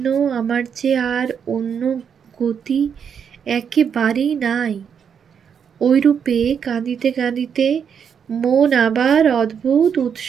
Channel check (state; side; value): quieter; left; 7.4 dB